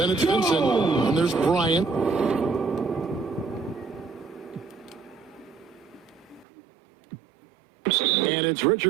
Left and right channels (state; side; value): drops out; left; at 6.5 s